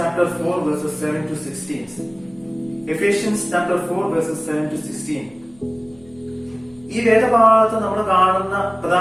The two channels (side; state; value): left; noise; rumble, 29 dB below the sound